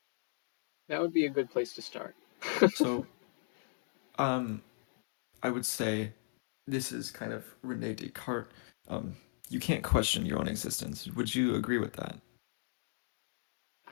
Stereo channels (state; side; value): silent; right; digital silence